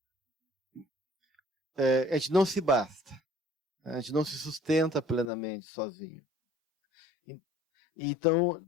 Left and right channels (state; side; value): drops out; right; at 5.3 s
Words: a gente não se basta, a gente não se sustenta plenamente sozinho. Então,